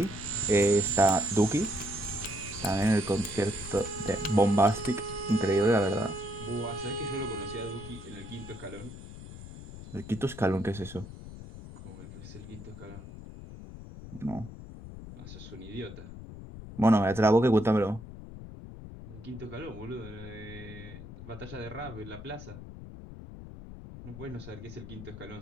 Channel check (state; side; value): noise; left; rumble, 13 dB below the sound